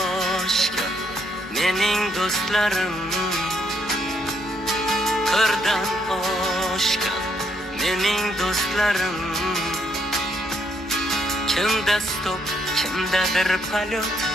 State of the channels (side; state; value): both; normal; correlation 0.73